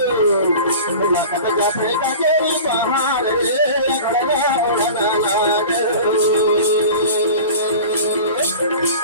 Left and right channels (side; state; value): both; inverted; correlation -0.37